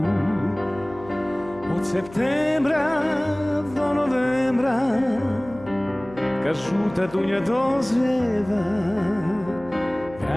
Od septembra do novembra kad žuta dunja dozrijeva,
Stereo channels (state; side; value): noise; left; hum, 19 dB below the sound